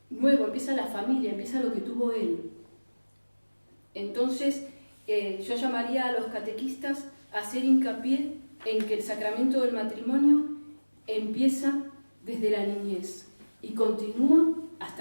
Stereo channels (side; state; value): both; inverted; correlation -1.00